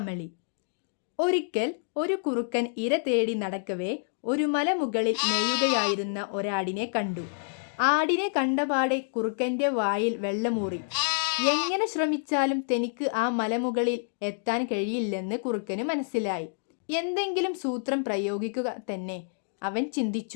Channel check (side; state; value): right; silent; digital silence